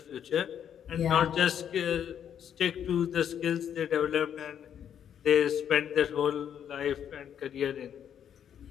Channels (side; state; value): right; quieter; 9.0 dB